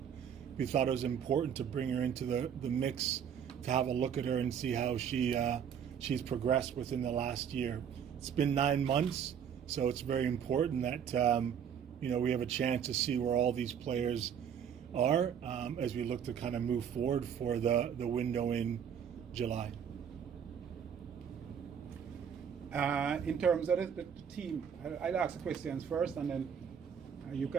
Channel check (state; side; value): quieter; left; 8.1 dB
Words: we thought it was important to bring her into the mix, to have a look at her and see how she's progressed within the last year. It's been 9 months, so it's very important that we have a chance to see where all these players are as we look to kind of move forward for the window in July. In terms of the team, I'll ask the questions first, and then you